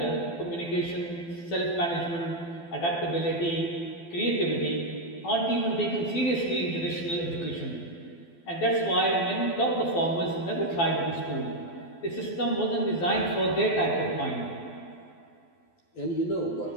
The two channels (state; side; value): late; right; 12 ms